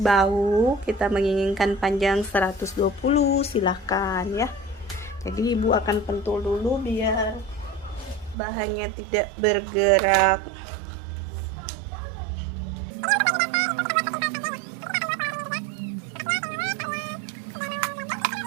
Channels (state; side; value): drops out; left; at 8.3 s